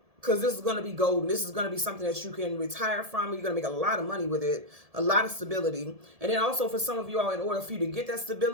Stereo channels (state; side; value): late; left; 1.7 ms